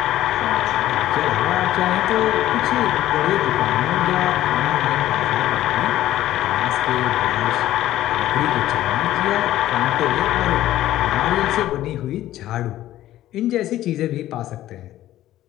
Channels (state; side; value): quieter; right; 13.9 dB